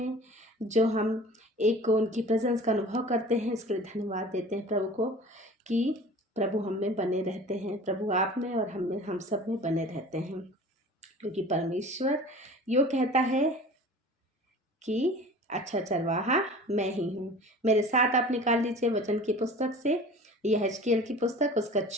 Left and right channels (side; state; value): both; normal; correlation 0.42